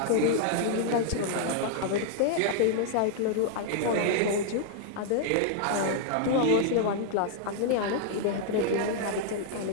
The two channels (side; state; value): both; different; correlation 0.00